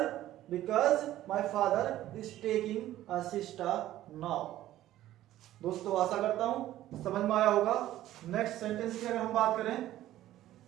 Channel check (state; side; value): quieter; left; 13.9 dB